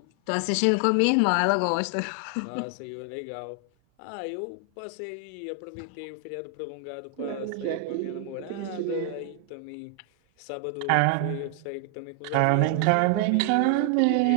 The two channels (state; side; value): different; both; correlation 0.00